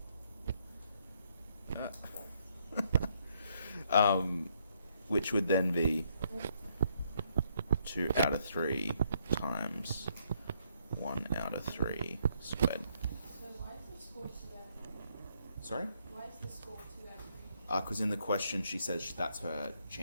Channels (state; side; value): inverted; both; correlation -0.71